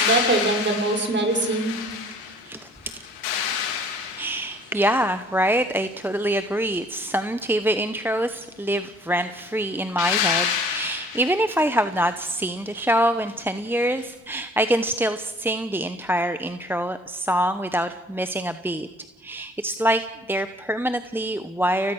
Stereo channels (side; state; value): both; normal; correlation 0.54